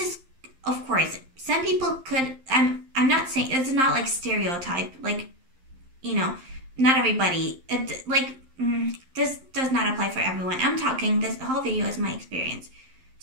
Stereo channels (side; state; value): left; late; 11 ms